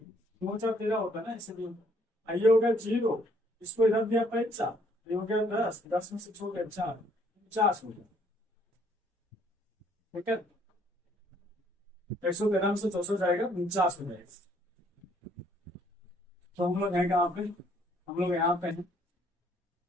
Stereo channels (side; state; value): both; normal; correlation 0.65